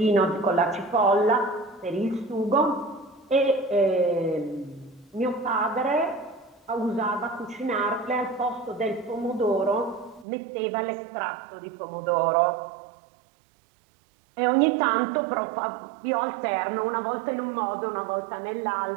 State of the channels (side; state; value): left; drops out; at 10.2 s